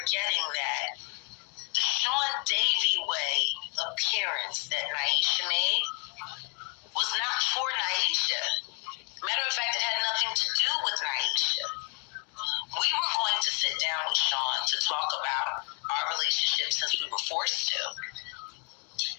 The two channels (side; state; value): right; quieter; 36.5 dB